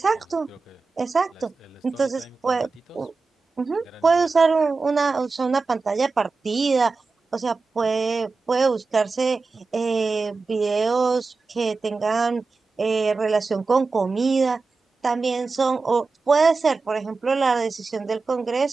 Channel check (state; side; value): quieter; left; 4.1 dB